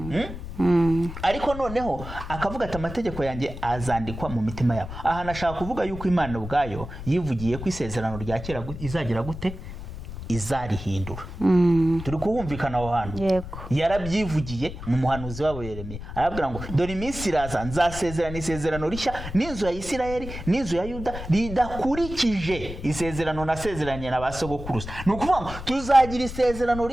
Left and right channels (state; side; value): noise; left; rumble, 10 dB below the sound